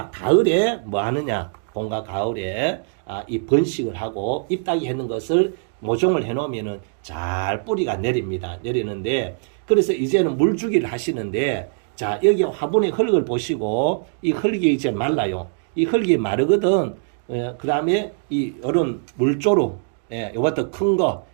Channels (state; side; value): silent; left; digital silence